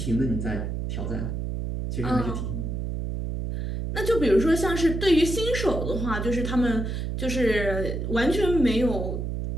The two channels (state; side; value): noise; right; hum, 3 dB below the sound